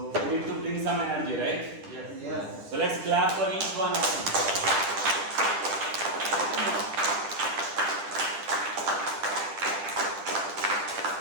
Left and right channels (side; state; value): left; late; 10 ms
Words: we need to bring some energy, right? Yes. So let's clap for each one of them.